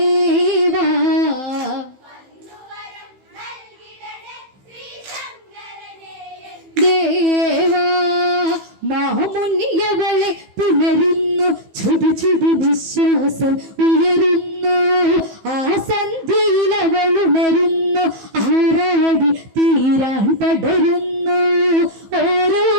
ദേവാ മാമുനിയവളെ പുണരുന്നു ചുടു ചുടു വിശ്വാസം ഉയരുന്നു. ആ സന്ധ്യയിൽ അവൾ ഉണരുന്നു ആറാടി തീരാൻ പടരുന്നു. ഓരോ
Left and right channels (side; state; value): left; late; 15 ms